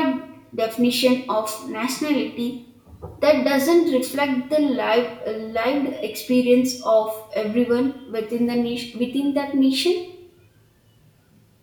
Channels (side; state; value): both; identical; correlation 1.00